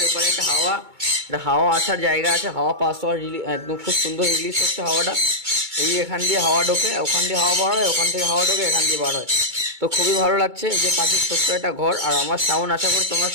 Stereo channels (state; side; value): late; left; 2.2 ms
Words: এপারে একটা হাওয়া আসার জায়গা আছে, হাওয়া পাস হওয়ার একদম খুব সুন্দর রিলিজ হচ্ছে হাওয়াটা। এই এখান দিয়ে হাওয়া ঢোকে, ওখান দিয়ে হাওয়া বার হয়, ওখান থেকে হাওয়া ঢোকে, এখান দিয়ে বার হয়। তো খুবই ভালো লাগছে যে পাখির ছোট্ট একটা ঘর। আর আমার সাউন্ড আশা করি তোমরা